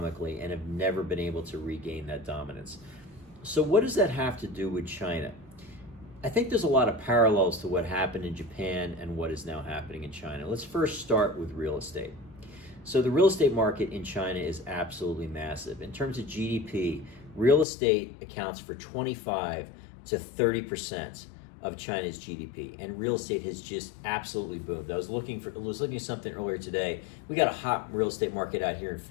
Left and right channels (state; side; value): drops out; right; at 17.7 s